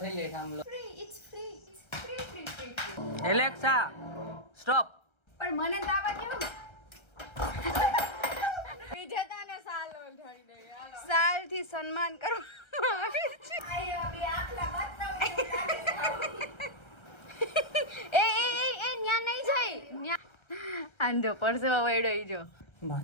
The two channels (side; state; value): right; late; 1.3 ms